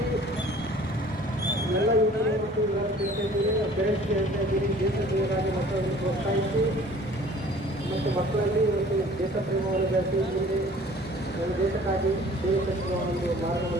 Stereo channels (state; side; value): normal; both; correlation 0.50